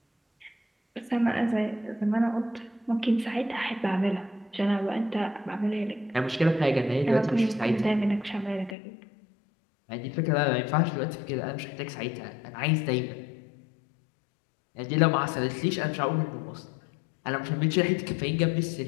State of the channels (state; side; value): drops out; right; at 8.8 s